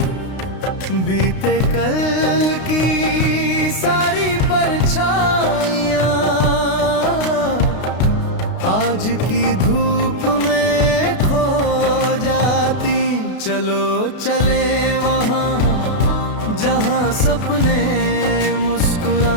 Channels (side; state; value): right; late; 32 ms